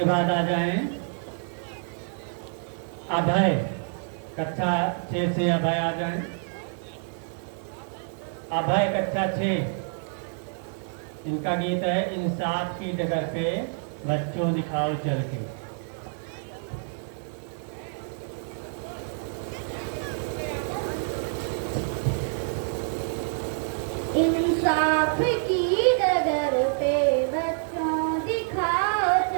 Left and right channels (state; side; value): silent; left; 57 dB below the other